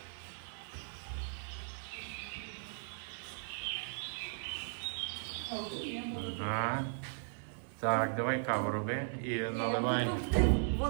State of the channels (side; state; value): left; silent; 53 dB below the other